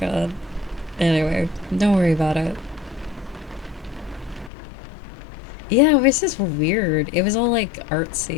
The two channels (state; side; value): drops out; right; at 4.5 s